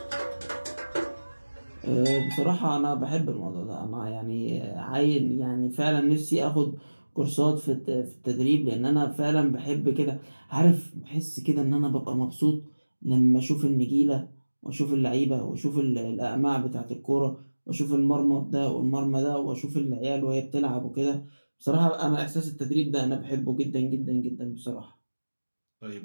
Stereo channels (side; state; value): both; inverted; correlation -1.00